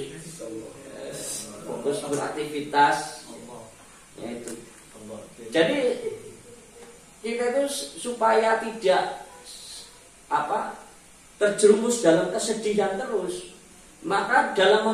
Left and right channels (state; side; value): identical; both; correlation 1.00